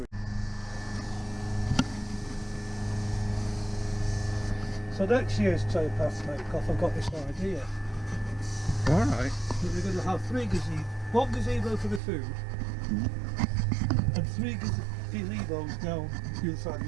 So next year's towpath make-off, I've got this idea. Alright. That we're going to have one gazebo for the food, and 3 gazebos down the other side of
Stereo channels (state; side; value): drops out; left; at 12.0 s